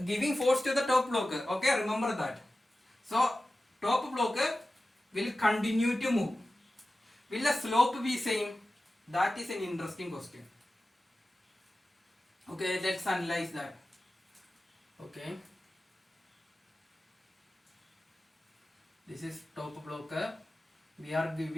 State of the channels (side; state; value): both; normal; correlation 0.95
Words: giving force to the top block. Okay, remember that. So top block will continue to move. Will the slope be same? That is an interesting question. Okay, let's analyze that. Okay, this is top block. We are